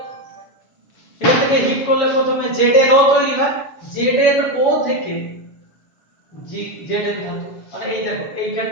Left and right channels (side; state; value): right; late; 7.1 ms